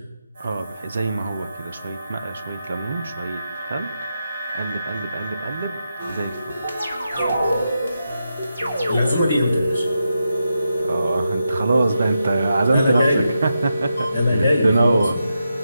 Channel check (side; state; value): both; inverted; correlation -0.86